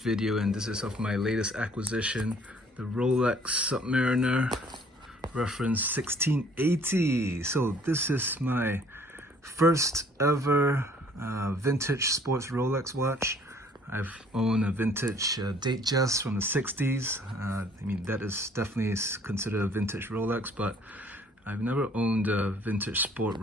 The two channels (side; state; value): both; normal; correlation 0.58